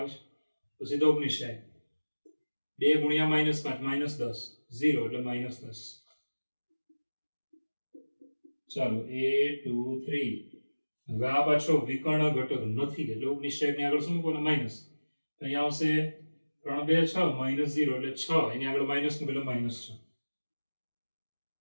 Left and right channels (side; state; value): both; inverted; correlation -1.00